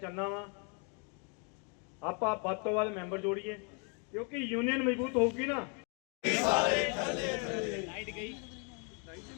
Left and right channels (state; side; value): quieter; right; 37.4 dB